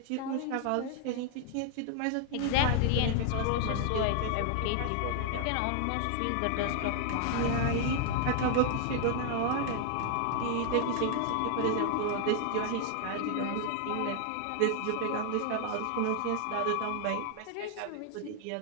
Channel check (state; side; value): different; both; correlation 0.00